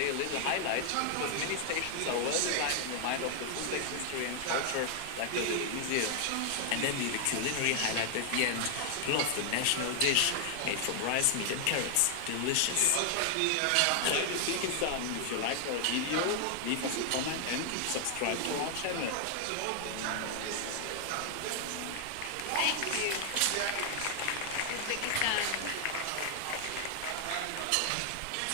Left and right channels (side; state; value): both; different; correlation 0.00